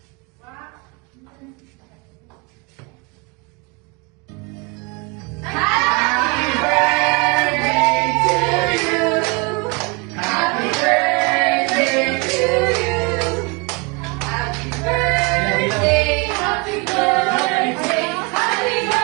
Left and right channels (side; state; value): left; quieter; 29.0 dB